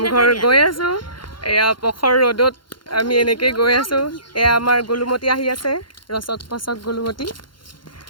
গৈ আছো এয়া পখৰ ৰ'দত আমি এনেকৈ গৈ আছো এয়া আমাৰ গোলুমতি আহি আছে ৰচক পচক গোলুমতি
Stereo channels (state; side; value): late; right; 0.72 ms